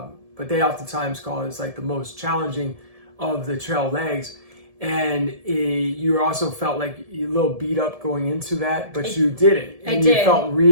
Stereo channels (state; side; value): late; left; 1.7 ms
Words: they oftentimes call it, it's like the most challenging of the trail legs. And you also felt like a little beat up going into that, but you did it. And you felt